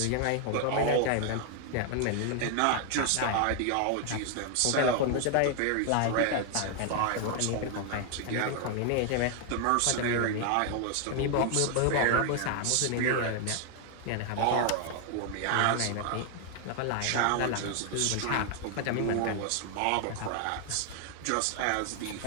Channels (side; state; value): both; different; correlation 0.00